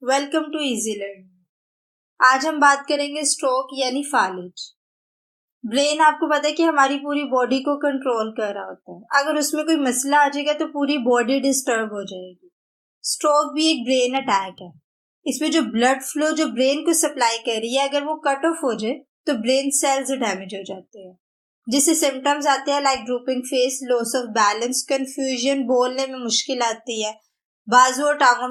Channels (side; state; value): both; identical; correlation 1.00